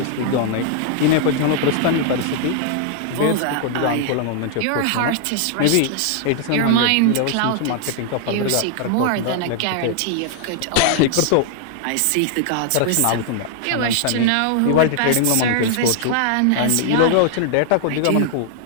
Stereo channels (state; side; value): different; both; correlation 0.00